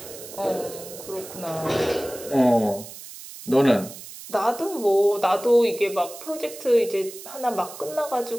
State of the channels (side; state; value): right; noise; hiss, 14 dB below the sound